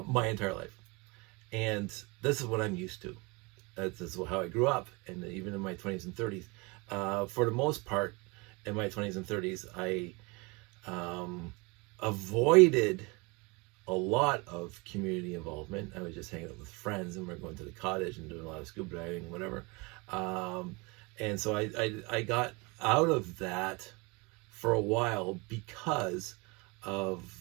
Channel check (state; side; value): quieter; left; 27.1 dB